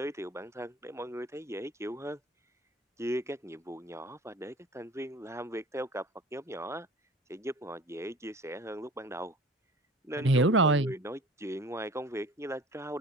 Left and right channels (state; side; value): normal; both; correlation 0.43